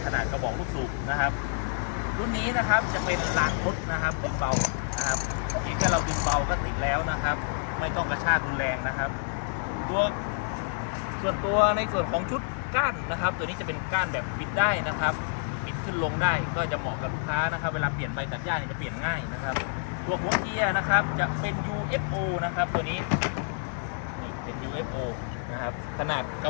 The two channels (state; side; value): silent; right; digital silence